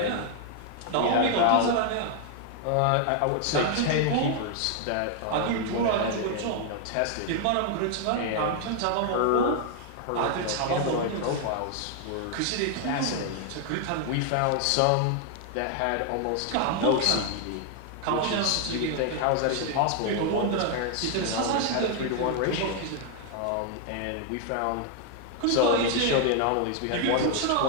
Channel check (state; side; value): different; both; correlation 0.00